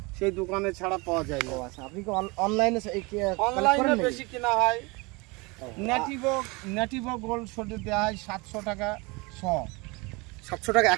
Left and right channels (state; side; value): quieter; left; 26.5 dB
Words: সেই দোকানে ছাড়া পাওয়া যায় না। আচ্ছা, আপনি কি অনলাইনে অনলাইনে বেশি কেনা হয়। ন্যাটিভো গোল্ড সোডে দেওয়া হয় 700 টাকা 700 টাকা